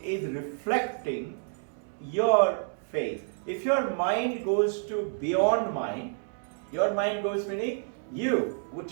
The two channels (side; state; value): left; silent; digital silence